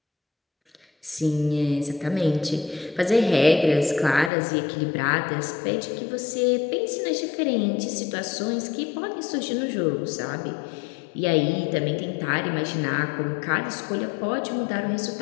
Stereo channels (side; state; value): right; drops out; at 4.3 s